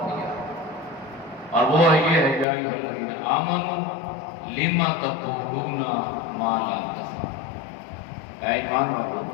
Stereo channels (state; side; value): drops out; right; at 2.5 s